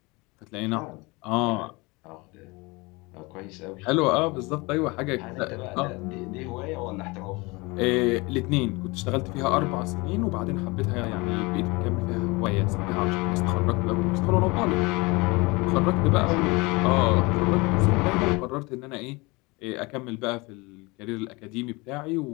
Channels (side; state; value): right; quieter; 25.3 dB